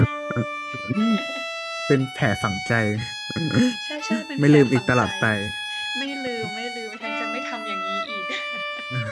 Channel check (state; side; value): identical; both; correlation 1.00